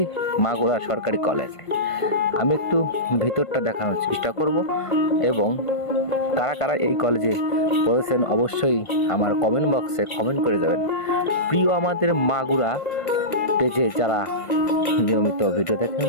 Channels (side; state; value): right; late; 1.5 ms